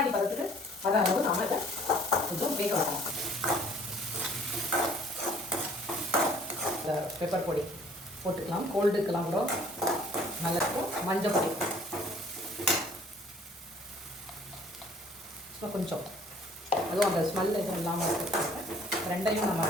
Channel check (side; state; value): both; normal; correlation 0.55